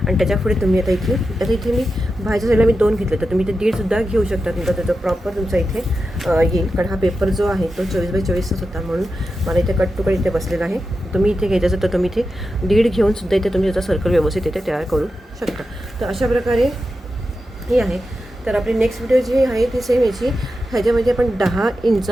आणि त्याच्यापुढे तुम्ही आता इथे मी बाहेरच्या साईडला मी 2 घेतले तर तुम्ही इथे 1.5सुद्धा घेऊ शकता. तुमचा त्याचा प्रॉपर तुमचा इथे येईल. कारण हा पेपर जो आहे तो 24x24च होता म्हणून मला इथे कट टू कट इथे बसलेला आहे. तुम्ही इथे घ्यायचं असेल तर तुम्ही इथे 1.5 घेऊन सुद्धा इथे तुम्ही त्याचा सर्कल व्यवस्थित इथे तयार करू शकता. तर अशा प्रकारे ही आहे. तर आपली नेक्स्ट व्हिडिओ जी आहे ती सेम याची ह्याच्यामध्ये आपण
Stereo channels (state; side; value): normal; both; correlation 0.90